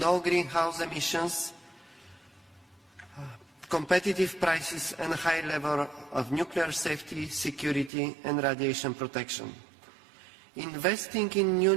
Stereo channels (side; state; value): left; drops out; at 7.9 s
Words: greenhouse emissions, competitive prices and a high level of nuclear safety, security and radiation protection. Investing in new